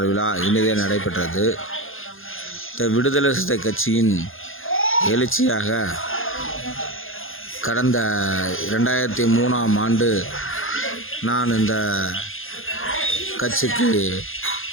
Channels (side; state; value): right; late; 0.59 ms